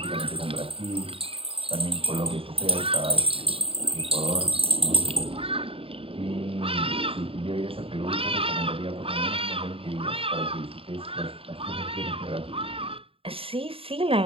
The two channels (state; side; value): late; left; 0.27 ms